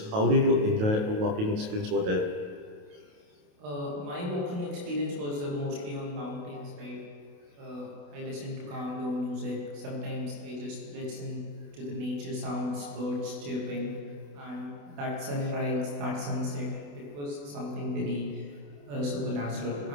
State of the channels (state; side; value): late; left; 28 ms